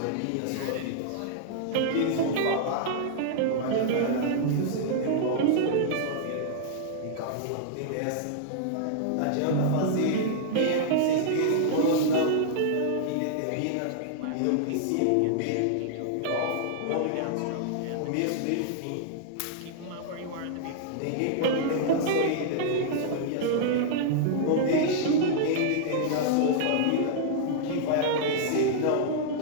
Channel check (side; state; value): both; different; correlation -0.01